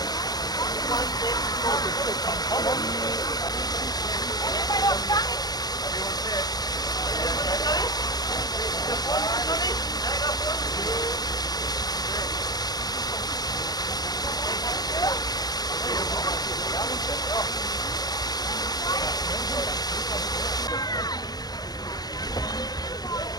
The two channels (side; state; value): right; late; 0.19 ms